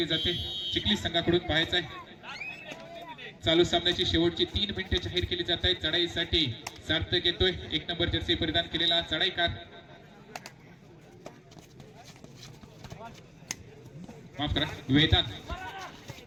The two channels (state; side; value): identical; both; correlation 1.00